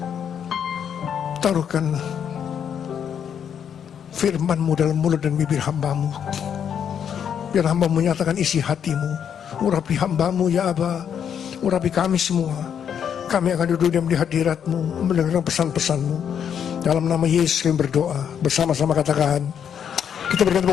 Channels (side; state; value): right; quieter; 8.3 dB